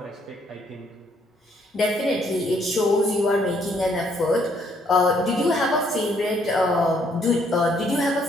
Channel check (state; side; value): normal; both; correlation 0.68